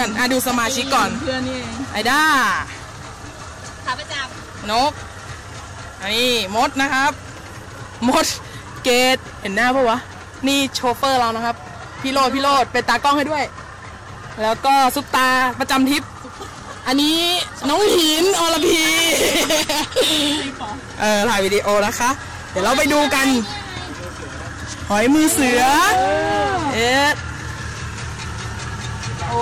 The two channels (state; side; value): identical; both; correlation 1.00